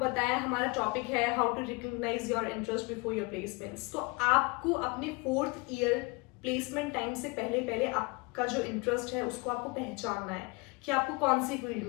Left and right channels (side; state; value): right; quieter; 27.7 dB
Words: बताया, हमारा टॉपिक है how to recognise your interest before your placements. तो आपको अपने 4th ईयर प्लेसमेंट टाइम से पहले पहले आपका जो इंटरेस्ट है उसको आपको पहचानना है कि आपको कौन सी फील्ड